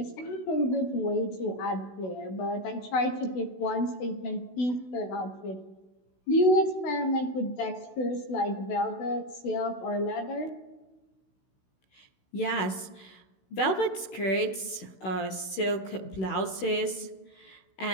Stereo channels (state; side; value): late; right; 16 ms